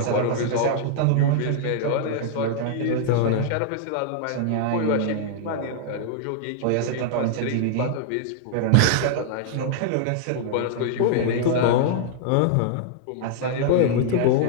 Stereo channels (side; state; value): both; different; correlation -0.01